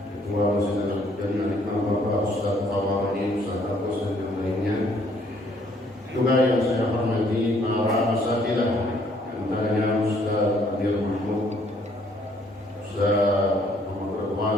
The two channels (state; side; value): normal; both; correlation 0.65